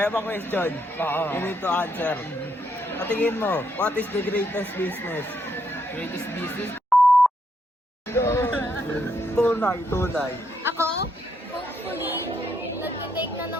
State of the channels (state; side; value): normal; both; correlation 0.76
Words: ba question? You need to answer. Patingin mo, what is the greatest business? Greatest business. Tunay. Ako, hopefully, nagtitake na